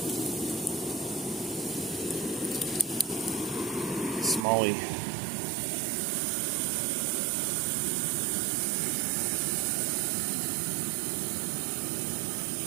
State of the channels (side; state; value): left; drops out; at 4.5 s